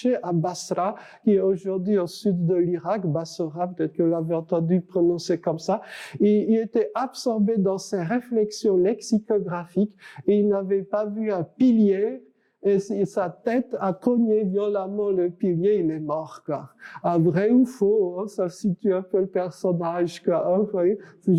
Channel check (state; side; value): identical; both; correlation 1.00